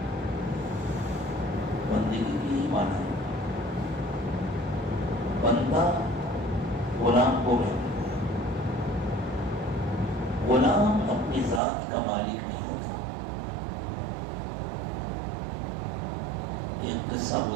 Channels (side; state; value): left; drops out; at 11.6 s